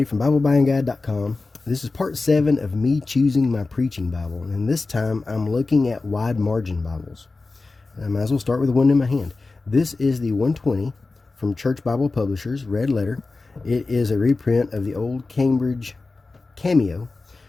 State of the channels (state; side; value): quieter; right; 3.6 dB